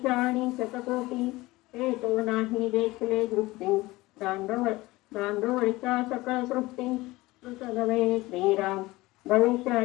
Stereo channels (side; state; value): right; quieter; 19.9 dB